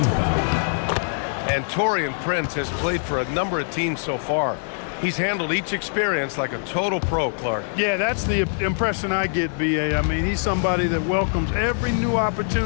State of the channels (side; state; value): right; silent; 62 dB below the other